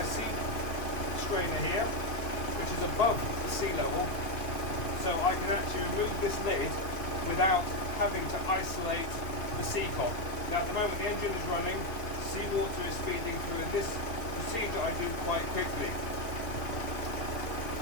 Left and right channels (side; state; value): right; late; 2.5 ms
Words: sea strainer here, which is above the sea level, so I can actually remove this lid without having to isolate the sea cock. Now at the moment the engine is running, seawater is feeding through, and this procedure I do quite quickly.